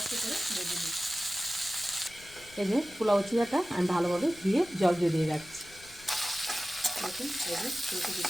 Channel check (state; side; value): noise; left; rumble, 23 dB below the sound